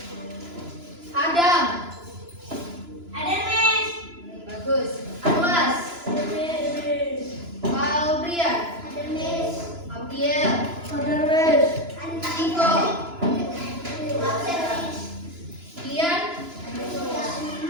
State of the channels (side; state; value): left; late; 2.9 ms